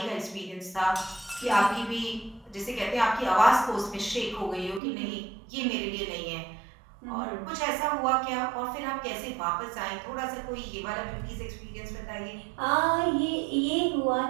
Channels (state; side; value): drops out; left; at 4.8 s